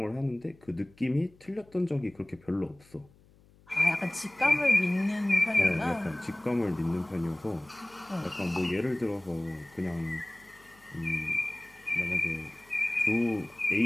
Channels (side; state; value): left; noise; hum, 28 dB below the sound